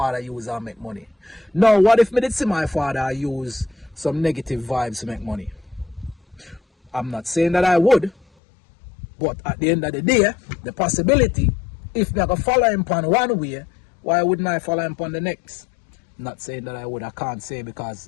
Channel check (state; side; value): drops out; right; at 8.2 s